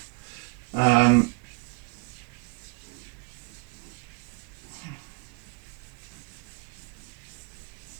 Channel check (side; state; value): left; quieter; 29.3 dB